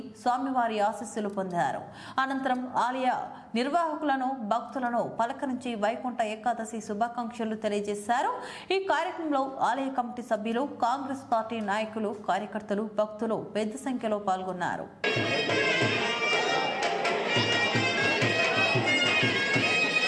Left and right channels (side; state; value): both; identical; correlation 1.00